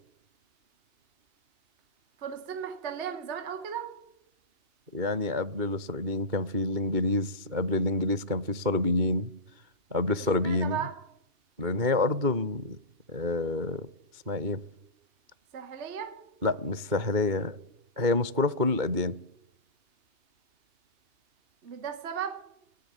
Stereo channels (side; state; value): left; late; 2.3 ms